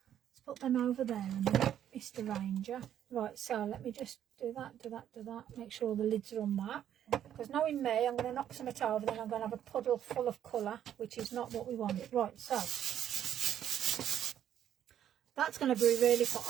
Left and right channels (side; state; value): left; quieter; 10.4 dB